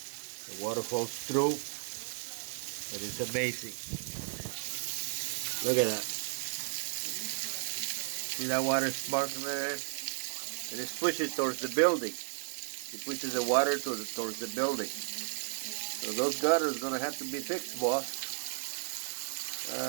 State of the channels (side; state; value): left; silent; digital silence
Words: The water falls through, and it's amazing. Look at that. See that water sparkling there? And it's pushing towards the building. It pushes the water towards the building. So those gutters are going to have to be fixed, boss.